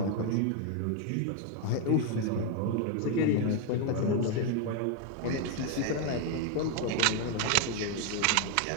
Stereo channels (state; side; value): different; both; correlation 0.01